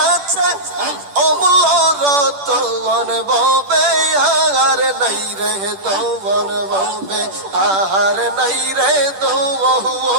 অমূল্য রতন ববে আর নাই রে তবন ববে আর নাই রে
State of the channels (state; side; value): late; left; 10 ms